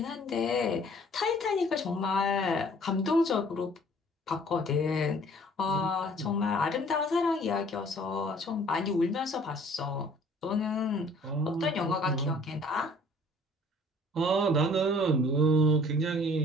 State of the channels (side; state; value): both; normal; correlation 0.54